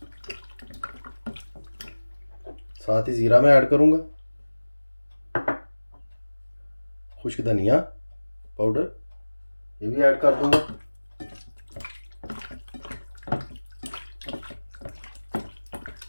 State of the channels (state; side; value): inverted; both; correlation -1.00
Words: साथ ही ज़ीरा मैं ऐड करूँगा, खुश्क धनिया पाउडर ये भी ऐड कर दूँगा।